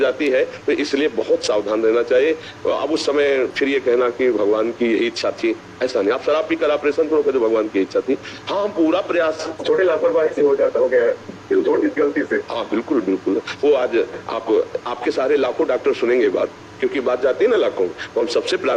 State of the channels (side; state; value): both; identical; correlation 1.00